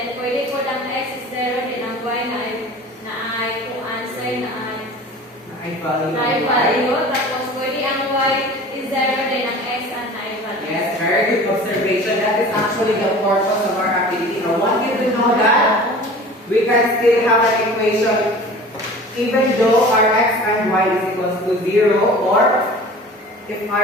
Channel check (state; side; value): normal; both; correlation 0.41